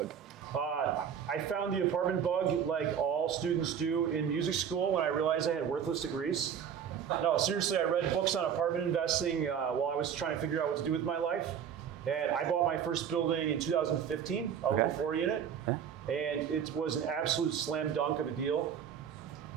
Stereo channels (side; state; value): left; quieter; 8.2 dB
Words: I found the apartment bug like all students do in music school when I realized I had worthless degrees. No, seriously, I read books on apartment investing while I was trying to figure out what to do with my life. And I bought my first building in 2015, a little 4-unit. And it was an absolute slam dunk of a deal.